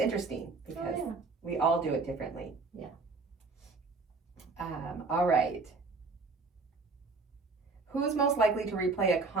because we all do it differently. Yeah. All right. Who's most likely to replay a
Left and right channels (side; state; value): left; quieter; 3.9 dB